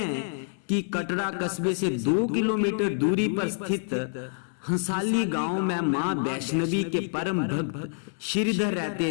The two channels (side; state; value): right; silent; digital silence